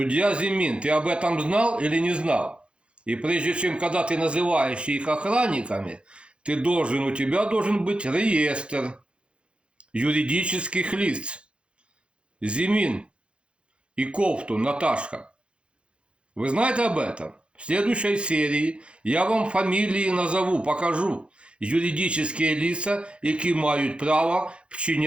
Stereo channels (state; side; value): late; left; 0.058 ms